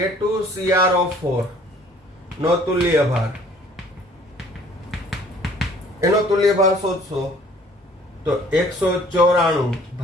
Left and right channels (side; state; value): both; normal; correlation 0.55